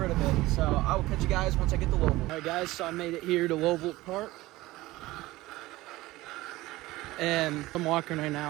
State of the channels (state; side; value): quieter; left; 18.5 dB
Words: of it. So I will catch you guys once I get to Lovelock. All right, guys, so I made it here to Lovelock Park, and I'm walking right